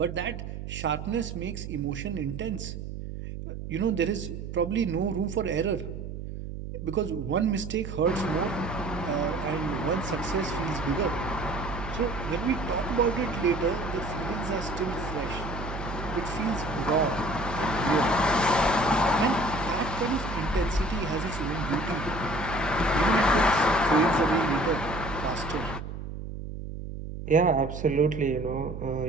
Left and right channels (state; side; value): noise; right; hum, 8 dB below the sound